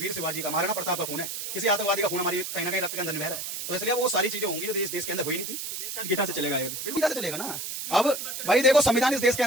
शिवाजी का, महाराणा प्रताप का खून है, किसी आतंकवादी का खून हमारी कहीं ना कहीं रक्त के अंदर बह रहा है। तो इसलिए वो सारी चीजें होंगी जो देश के अंदर हुई नहीं थी। गीता से चलेगा, बिल्कुल गीता से चलेगा ना। अब भाई देखो, संविधान इस देश के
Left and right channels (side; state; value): right; noise; hiss, 6 dB below the sound